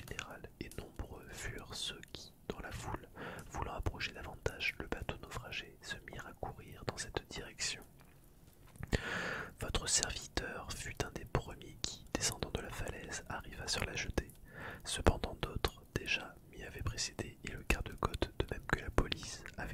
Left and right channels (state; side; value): identical; both; correlation 1.00